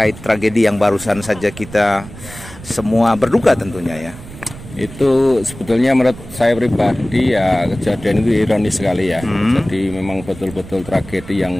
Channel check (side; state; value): right; noise; rumble, 16 dB below the sound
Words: tragedi yang barusan saja kita semua berduka tentunya ya. Itu sebetulnya menurut saya pribadi ya kejadian itu ironis sekali ya. Jadi memang betul-betul tragedi